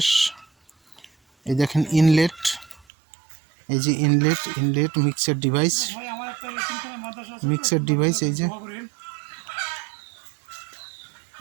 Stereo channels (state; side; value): drops out; left; at 2.9 s